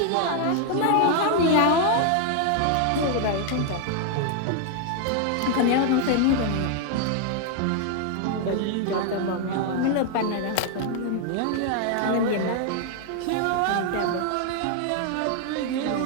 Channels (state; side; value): different; both; correlation 0.00